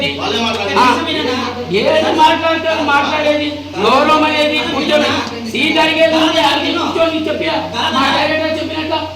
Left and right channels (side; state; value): both; identical; correlation 1.00